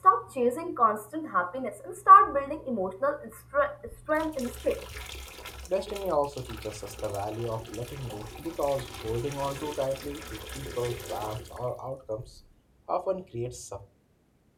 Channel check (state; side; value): identical; both; correlation 1.00